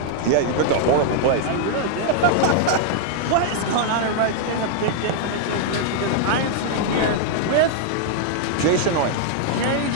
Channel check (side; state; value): both; different; correlation -0.01